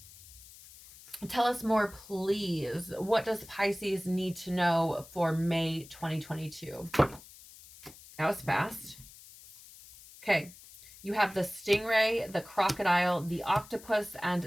Tell us more, please. What does Pisces need to know for May 2022? That was fast. Okay. You have the stingray, the crocodile, the octopus,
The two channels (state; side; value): noise; left; hiss, 20 dB below the sound